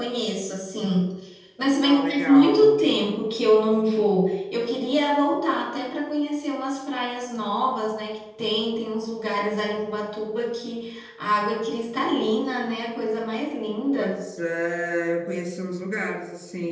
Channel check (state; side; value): identical; both; correlation 1.00